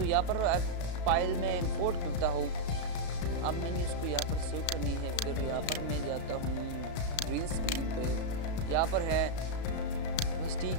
यहाँ पर फाइल में इंपोर्ट करता हूँ। अब मैंने इसको यहाँ पर सेव करनी है, फिर यहाँ पर मैं जाता हूँ ग्रीन स्क्रीन पे, यहाँ पर है बस ठीक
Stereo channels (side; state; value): right; late; 34 ms